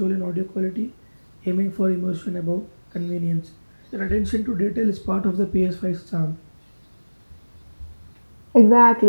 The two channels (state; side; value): inverted; both; correlation -1.00